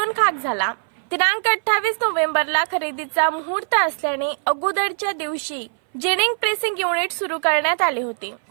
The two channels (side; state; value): left; silent; 59 dB below the other